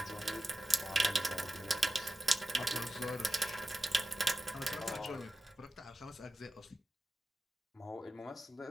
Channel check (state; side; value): normal; both; correlation 0.93